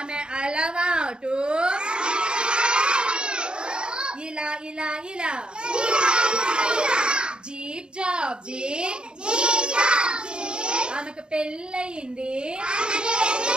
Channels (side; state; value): left; late; 0.050 ms